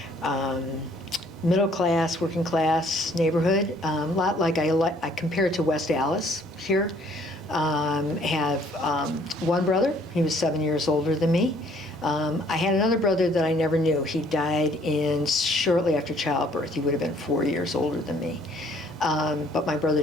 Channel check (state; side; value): normal; both; correlation 0.60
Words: middle class, working class neighborhood. A lot like I compare it to West Allis here. Have one brother. He was 7 years older than me. I had another brother that I never knew. He died shortly after childbirth. He would have been 4 years older than me. But my